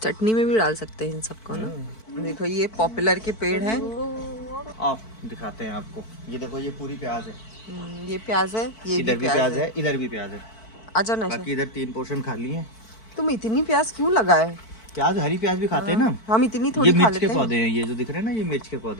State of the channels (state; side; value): late; right; 4.5 ms